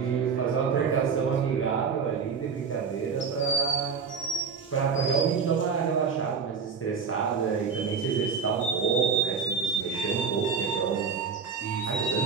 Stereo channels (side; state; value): left; quieter; 5.8 dB